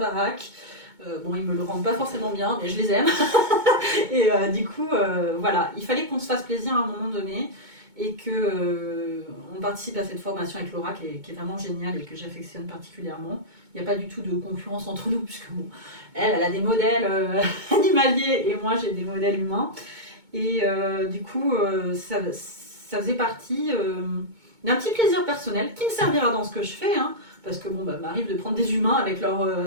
Ils me le rendent pas forcément bien, mais je les aime. Et du coup, il fallait qu'on se fasse plaisir à un moment donné et qu'on participe à cette formation avec Laura qui est vraiment géniale et que j'affectionne particulièrement. Il n'y a pas du tout de concurrence entre nous, puisque elle a des modèles animaliers et moi j'ai des modèles humains. Et du coup, ça faisait partie d'un petit plaisir personnel qui me servira dans ce que je fais, parce que m'arrive de prendre des humains avec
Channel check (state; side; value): late; left; 2.2 ms